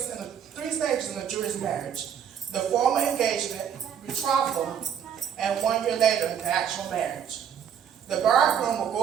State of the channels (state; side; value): quieter; left; 8.5 dB